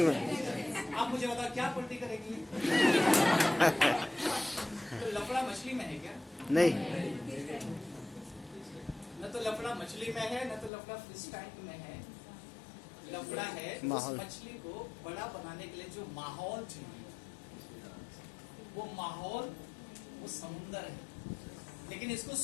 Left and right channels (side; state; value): right; drops out; at 10.7 s